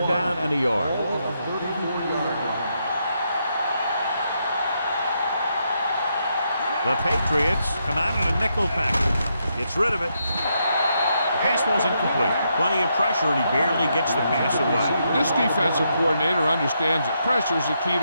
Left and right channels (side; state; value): both; inverted; correlation -0.80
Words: down and a yard. The Patriots come out in a nickel package. Gets rid of it. The pass ball's incomplete. Plenty of pressure, and he barely gets the pass away. This defensive coordinator understands that pressure is the key